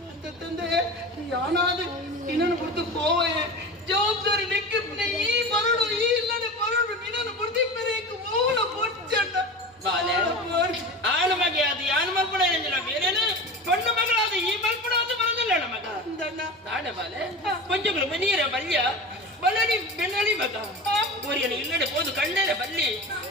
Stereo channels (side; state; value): both; normal; correlation 0.30